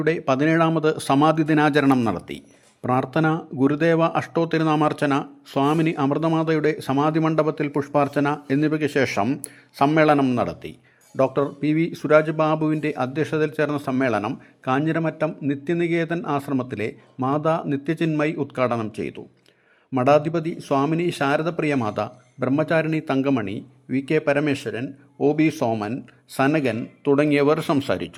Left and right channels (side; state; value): both; identical; correlation 1.00